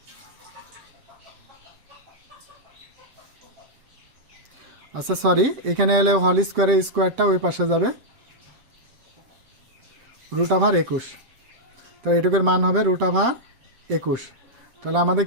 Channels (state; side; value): late; left; 7.9 ms